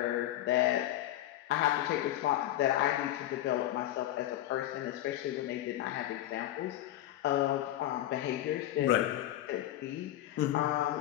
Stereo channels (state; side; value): quieter; right; 13.6 dB